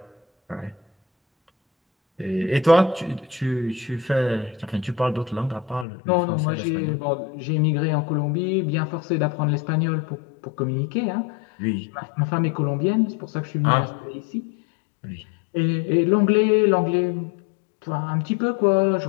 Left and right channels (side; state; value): right; drops out; at 5.9 s